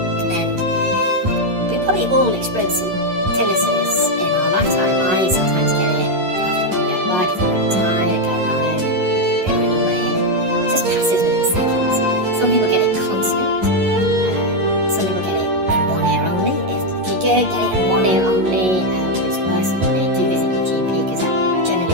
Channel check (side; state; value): left; late; 11 ms